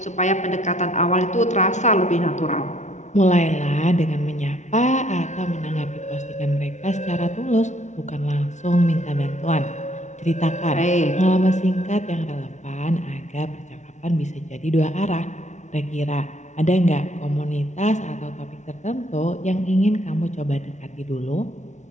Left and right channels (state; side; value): late; right; 0.34 ms